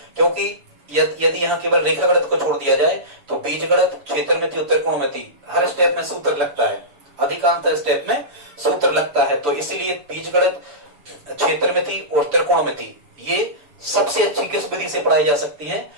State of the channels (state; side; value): late; left; 6.9 ms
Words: क्योंकि यदि यहाँ केवल रेखागणित को छोड़ दिया जाए तो बीजगणित, क्षेत्रमिति और त्रिकोणमिति हर स्टेप में सूत्र लगता है, अधिकांश स्टेप में सूत्र लगता है, तो इसीलिए बीजगणित, क्षेत्रमिति और त्रिकोणमिति ये सबसे अच्छी किस विधि से पढ़ाई जा सकती है,